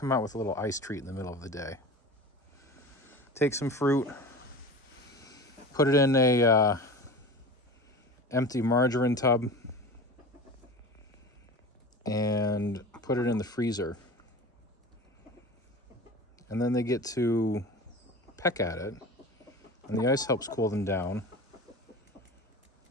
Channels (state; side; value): normal; both; correlation 0.34